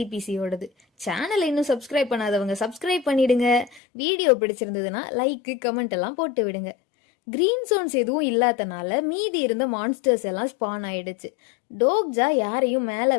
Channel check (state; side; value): drops out; right; at 3.8 s